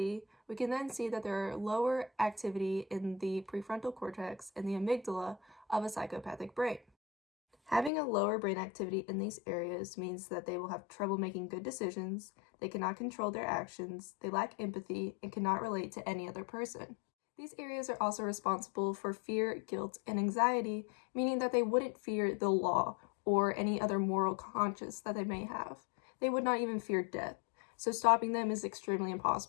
we can then see that there are lower activity in the prefrontal cortex and the amygdala of a psychopathic brain. Having a lower brain activity in these areas means that they will have trouble making good decisions, they cannot control their actions, they lack empathy, and cannot relate to any other person. These areas are also responsible for fear, guilt, and anxiety, meaning that they wouldn't fear the law or any other moral conscience that they may have. They would not even fear death, so stopping them is extremely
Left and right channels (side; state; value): right; drops out; at 7.9 s